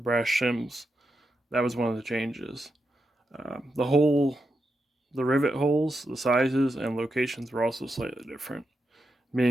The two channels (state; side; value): normal; both; correlation 0.86